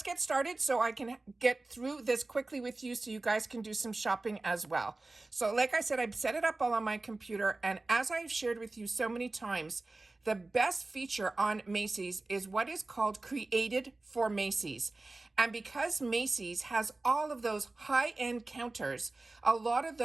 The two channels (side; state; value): left; quieter; 3.1 dB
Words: get started so I can get through this quickly with you so you guys can do some shopping as well. So like I said, I've set it up all on my computer, and as I've shared with you so many times, the best feature on Macy's is what is called Created for Macy's. And because Macy's has all of those high-end counters, a lot of